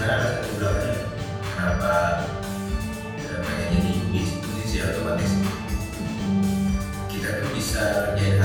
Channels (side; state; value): both; identical; correlation 1.00